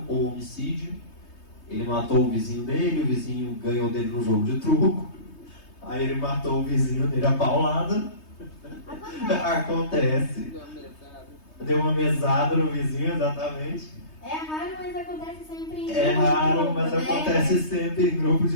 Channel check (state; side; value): late; right; 3.2 ms